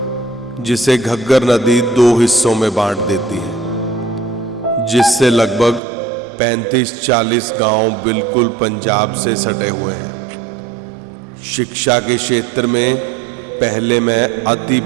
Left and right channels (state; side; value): drops out; left; at 5.8 s